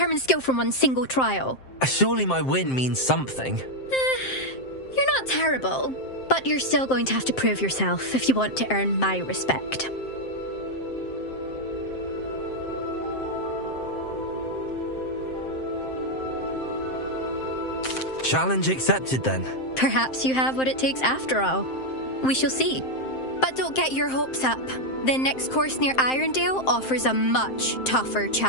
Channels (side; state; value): right; late; 7.6 ms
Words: skill from one single trial. Surely my win means something. You're not terrible, but you're still going to have to prove yourself if you want to earn my respect. Challenge accepted, then. Perhaps you have what it takes after all. We shall see. But don't get your hopes up. The next course near Irondale offers a much tougher